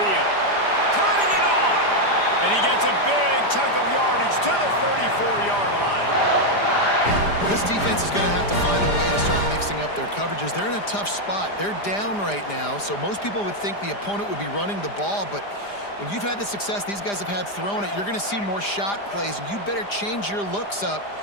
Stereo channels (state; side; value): late; right; 5.0 ms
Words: Turning it on. And he gets a big chunk of yardage to the 34-yard line. This defense is going to have to find a way to start mixing up their coverages. They're in a tough spot. They're down right now, so most people would think the opponent would be running the ball, but when you've had the success these guys have had throwing it, you're going to see more shot plays, and you better change your looks up